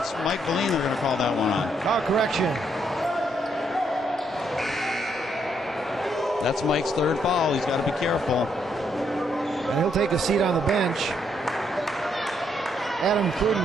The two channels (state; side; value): normal; both; correlation 0.74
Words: Mike Valine they're going to call that one on. Oh, correction. That's Mike's third foul. He's got to be careful. And he'll take a seat on the bench. Adam